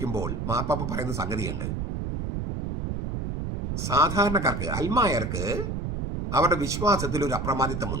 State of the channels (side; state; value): right; noise; rumble, 3 dB below the sound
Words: മാർപ്പാപ്പ പറയുന്ന സംഗതിയുണ്ട്. സാധാരണക്കാർക്ക്, അൽമായർക്ക് അവരുടെ വിശ്വാസത്തിൽ ഒരു